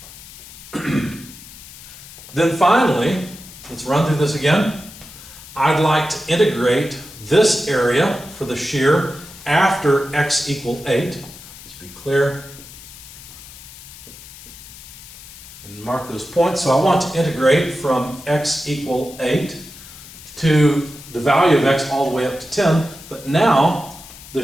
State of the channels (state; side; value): noise; left; hiss, 17 dB below the sound